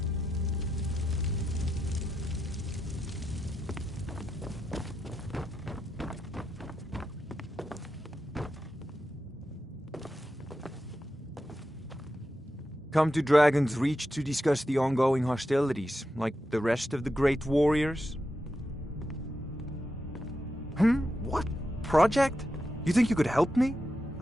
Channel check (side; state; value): both; normal; correlation 0.87